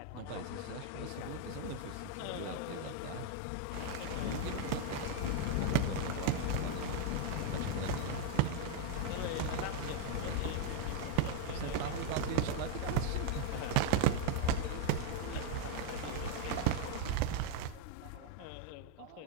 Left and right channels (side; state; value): both; different; correlation 0.00